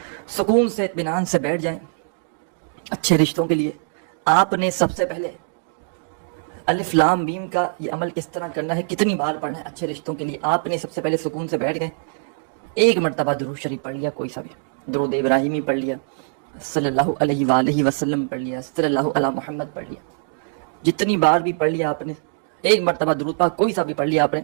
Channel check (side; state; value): left; silent; digital silence